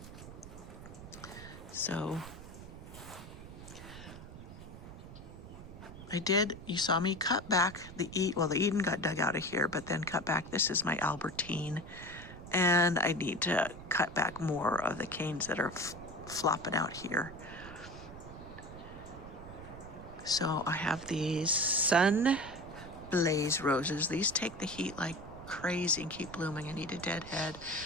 So, you saw me cut back the Eden got dug out of here, but then cut back. This is my Albertine, and I need to cut back more of the canes that are flopping out here. So I have these Sun Blaze roses. These take the heat like crazy and keep blooming. I need a deadhead.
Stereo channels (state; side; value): noise; right; rumble, 14 dB below the sound